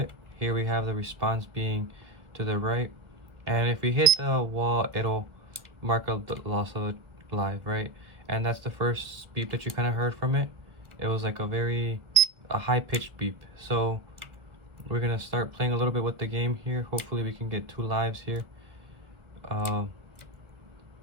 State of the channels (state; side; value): late; left; 1.5 ms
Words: Here we have the response being to the right, and if we hit the wall, it'll mark up the loss of a life, right? And that's the first beep that you kind of heard from it. It was like a high-pitched beep. So we're gonna start playing a little bit with the game here. Hopefully we can get 2 lives here.